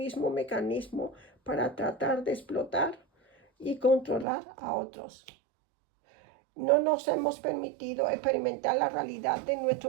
mecanismo para tratar de explotar y controlar a otros. No nos hemos permitido experimentar la realidad de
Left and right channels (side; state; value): left; drops out; at 4.2 s